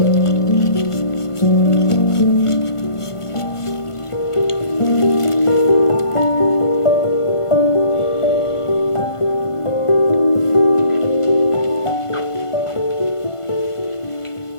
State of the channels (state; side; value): late; right; 1.5 ms